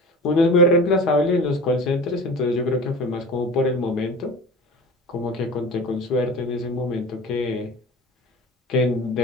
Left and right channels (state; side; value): normal; both; correlation 0.36